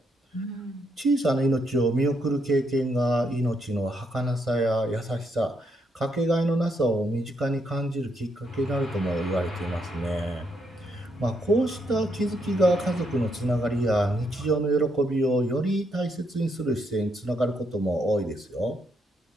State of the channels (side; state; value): both; normal; correlation 0.77